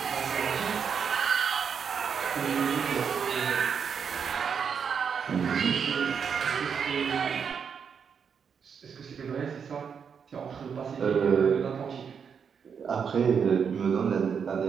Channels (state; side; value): quieter; left; 6.8 dB